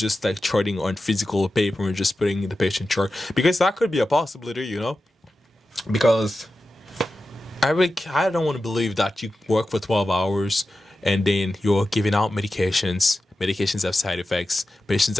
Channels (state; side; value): normal; both; correlation 0.92